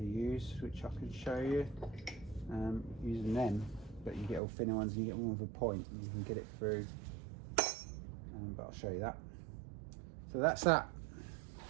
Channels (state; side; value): drops out; left; at 4.4 s